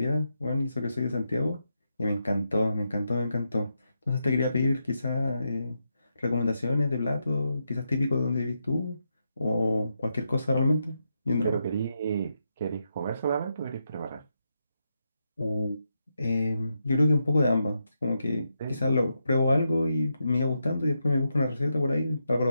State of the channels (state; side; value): inverted; both; correlation -0.83